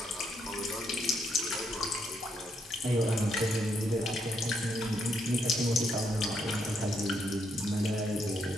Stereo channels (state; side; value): normal; both; correlation 0.75